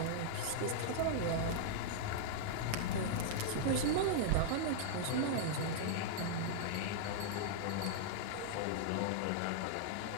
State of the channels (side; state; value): both; different; correlation -0.01